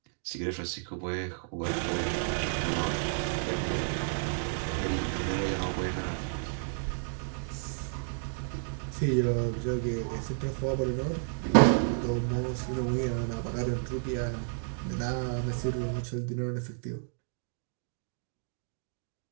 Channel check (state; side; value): silent; left; digital silence